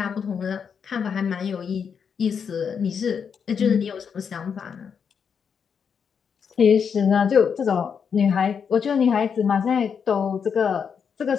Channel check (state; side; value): quieter; right; 6.8 dB